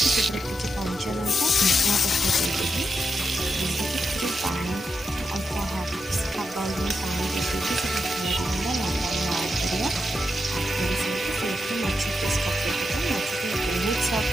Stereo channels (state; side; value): normal; both; correlation 0.86